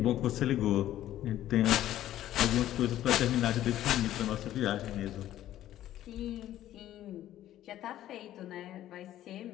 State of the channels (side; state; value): right; quieter; 13.0 dB